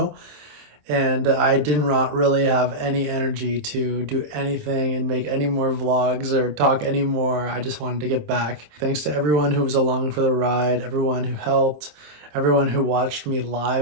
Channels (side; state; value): left; late; 27 ms